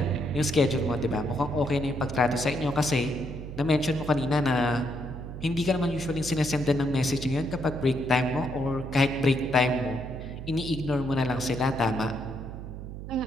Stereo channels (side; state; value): right; noise; hum, 9 dB below the sound